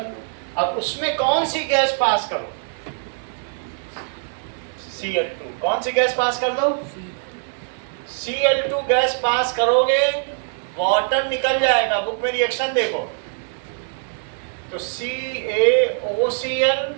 लो। अब उसमें कौन सी गैस पास करो? Cl2। कौन सी गैस पास कर दो? Cl2 गैस पास करोगे, वाटर निकल जाएगा। बुक में रिएक्शन देखो, तो CaOCl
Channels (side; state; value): left; silent; digital silence